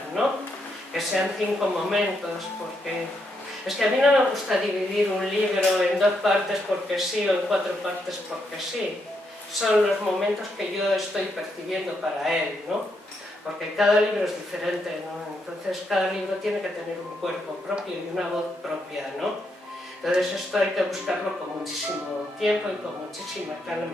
¿no? Que sean 5 momentos, porque es que a mí no me gusta dividir un libro en 2 partes porque sí, o en 4 partes porque sí. Son los momentos que yo estoy percibiendo para él, ¿no? Porque cada libro es diferente, ¿no? Entonces cada libro tiene que tener un cuerpo propio y una voz propia, ¿no? Entonces esto hay que buscarlo con muchísimo tiempo y con muchísima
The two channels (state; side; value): normal; both; correlation 0.79